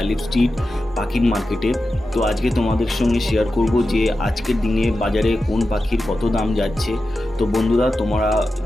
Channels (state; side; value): normal; both; correlation 0.92